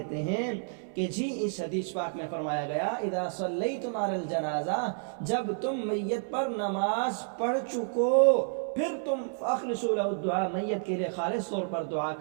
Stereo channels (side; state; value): left; silent; 58 dB below the other